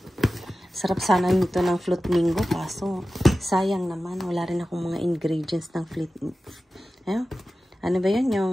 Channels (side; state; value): both; normal; correlation 0.95